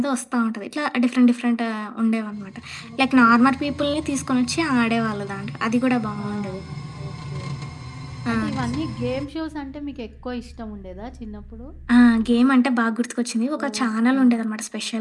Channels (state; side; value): identical; both; correlation 1.00